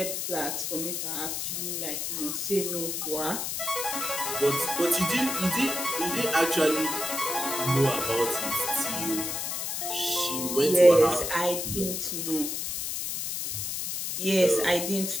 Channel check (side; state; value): left; noise; hiss, 3 dB below the sound